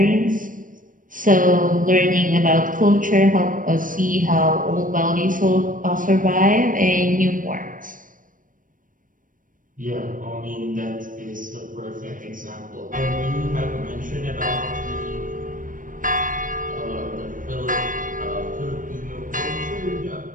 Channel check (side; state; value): left; late; 0.39 ms